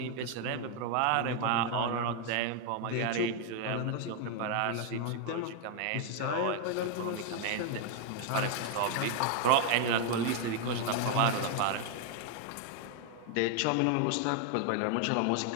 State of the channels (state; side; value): different; both; correlation 0.00